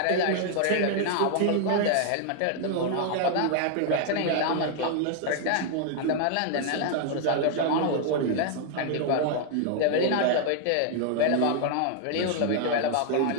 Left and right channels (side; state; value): both; different; correlation 0.00